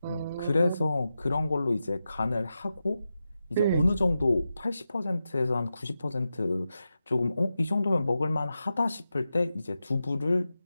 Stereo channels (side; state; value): both; inverted; correlation -0.90